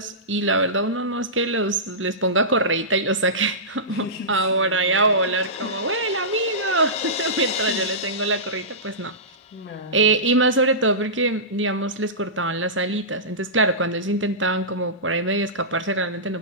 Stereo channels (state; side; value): normal; both; correlation -0.19